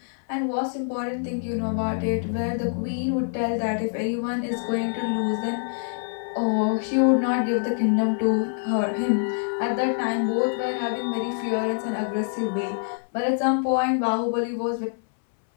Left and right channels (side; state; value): right; silent; 61 dB below the other